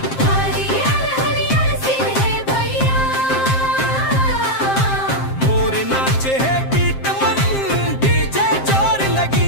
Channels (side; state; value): right; late; 7.6 ms